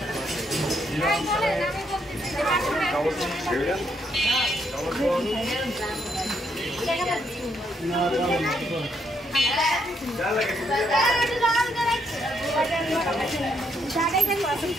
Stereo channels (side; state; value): both; normal; correlation 0.75